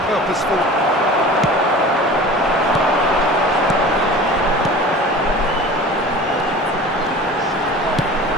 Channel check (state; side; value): normal; both; correlation 0.39